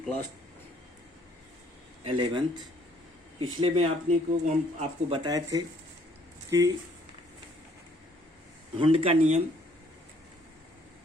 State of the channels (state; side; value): normal; both; correlation 0.63